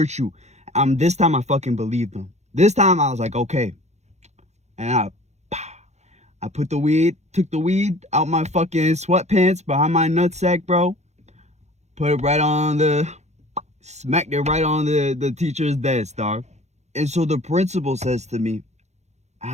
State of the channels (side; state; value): left; late; 0.33 ms